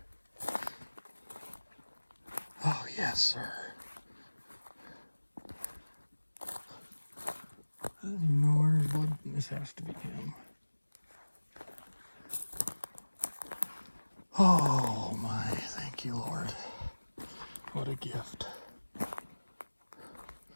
Oh, yes, sir. I don't even know where his blood. This has to be him. Oh, my. Thank you, Lord. What a gift.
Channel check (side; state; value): both; inverted; correlation -1.00